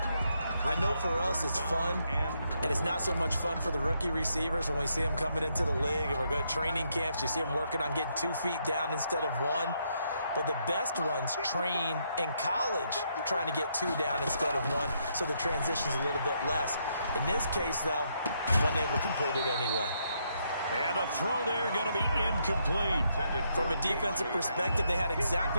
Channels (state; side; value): inverted; both; correlation -0.76